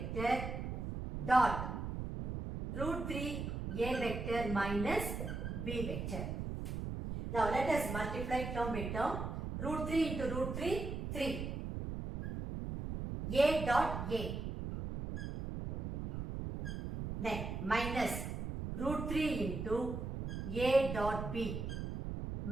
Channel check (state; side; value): noise; right; rumble, 4 dB below the sound